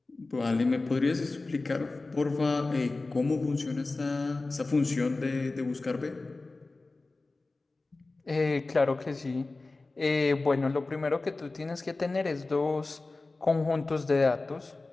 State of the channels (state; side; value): quieter; right; 3.4 dB